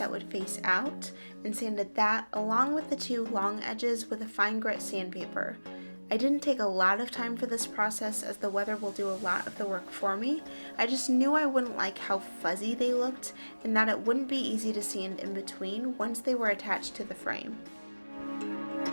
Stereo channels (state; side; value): inverted; both; correlation -1.00